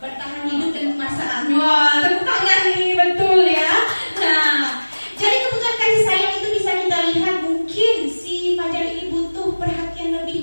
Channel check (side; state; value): both; inverted; correlation -1.00